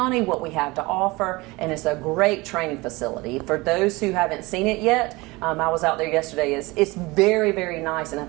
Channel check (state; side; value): quieter; left; 22.7 dB